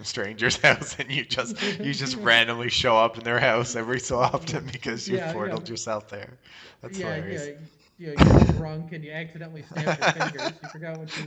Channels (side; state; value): both; identical; correlation 1.00